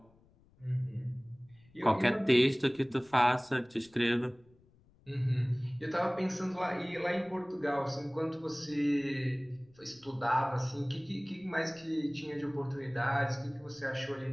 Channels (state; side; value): noise; left; rumble, 30 dB below the sound